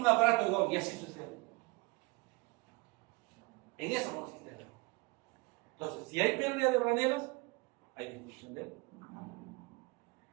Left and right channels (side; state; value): left; quieter; 25.9 dB